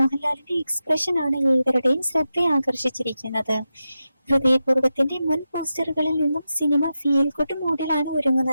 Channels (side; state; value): both; inverted; correlation -0.90